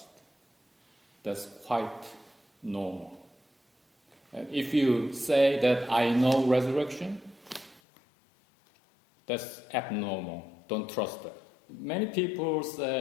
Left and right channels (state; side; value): drops out; right; at 7.8 s